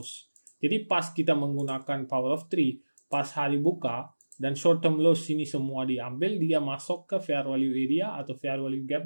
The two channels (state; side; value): inverted; both; correlation -1.00